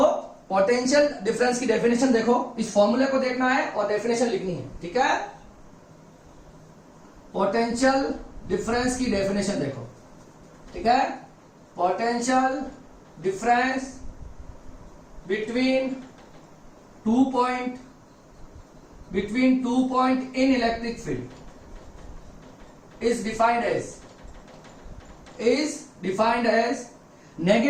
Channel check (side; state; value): both; identical; correlation 1.00